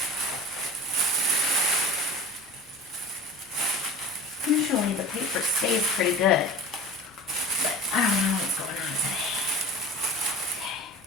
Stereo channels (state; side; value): normal; both; correlation 0.36